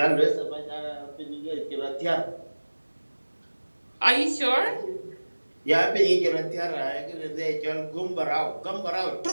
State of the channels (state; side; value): inverted; both; correlation -1.00